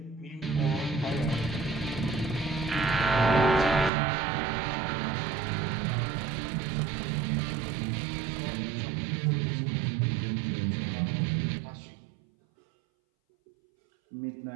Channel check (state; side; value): drops out; left; at 3.9 s